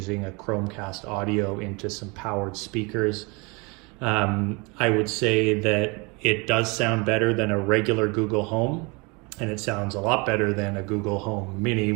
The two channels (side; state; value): left; quieter; 28.5 dB